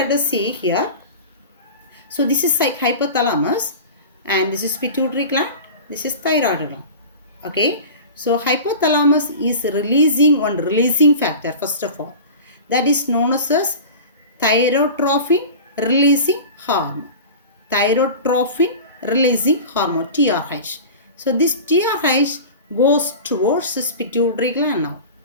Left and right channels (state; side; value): inverted; both; correlation -0.34